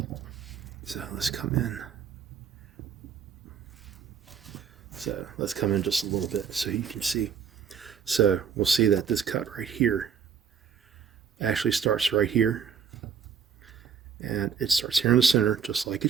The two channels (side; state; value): left; quieter; 7.0 dB